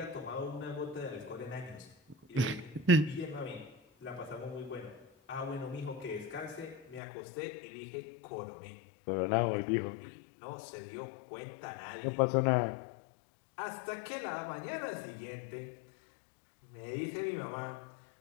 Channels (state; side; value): drops out; right; at 7.0 s